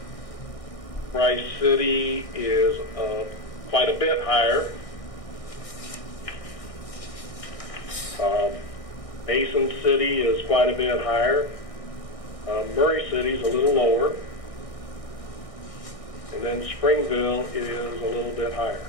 Rice City is quite a bit higher. Mason City is quite a bit higher. Murray City is a little lower. And then Springville is a little bit higher.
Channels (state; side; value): late; right; 1.6 ms